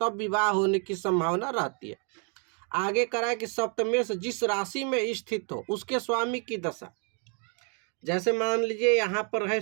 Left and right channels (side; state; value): left; quieter; 39.4 dB